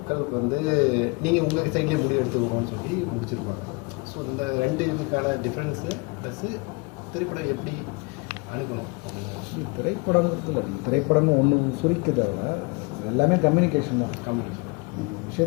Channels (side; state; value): right; quieter; 28.8 dB